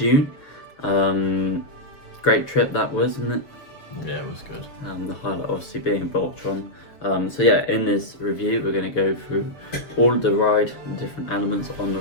Great trip that was, wasn't it? Yeah, it was good. The highlight obviously being Voltron. So yeah, in this review we're going to go through all of the ride, the different elements on the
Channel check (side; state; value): right; late; 6.8 ms